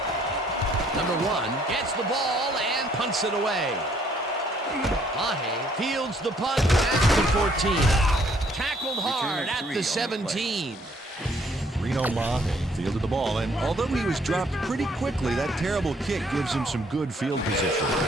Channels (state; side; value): normal; both; correlation 0.64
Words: Number 1 gets the ball and punts it away. Mahe fields the punt at the 14. Tackled hard at the 17. Reno Mahe fielded the ball, and although he was dropped pretty quickly, that terrible kick gives him some good field position.